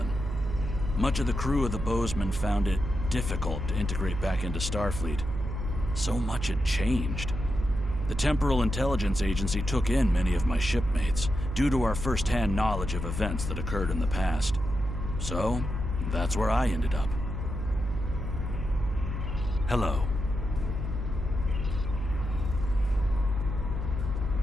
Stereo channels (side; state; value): right; noise; hum, 5 dB below the sound